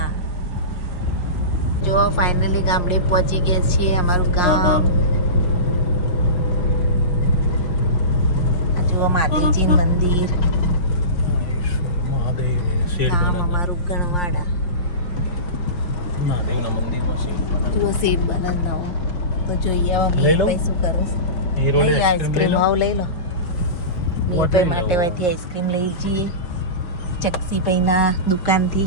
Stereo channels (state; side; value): late; right; 5.4 ms